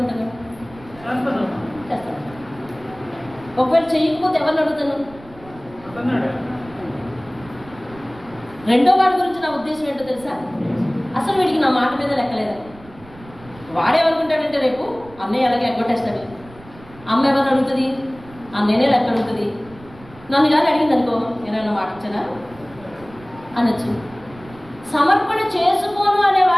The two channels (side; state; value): right; noise; rumble, 21 dB below the sound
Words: చేస్తాను. ఒకవేళ చెయ్యకపోతే ఎవరిని అడుగుతాను? రెండో వాడి గురించి నా ఉద్దేశం ఏంటో తెలుసా? అసలు వీడికి నా మాట మీద లెక్కలేదు. వాడేమనుకుంటాడంటే రేపు అన్నయ్య అలాగే ఎగ్గొట్టేస్తాడు, అమ్మ ఎవరిని అడుగుతుంది, అన్నయ్యనే లెక్క అడుగుతుంది. నన్ను కానీ అడిగింది అనుకో, నేనైనా మాట ఇచ్చానా అనొచ్చు. సమర్పణ చేసుకోను అనే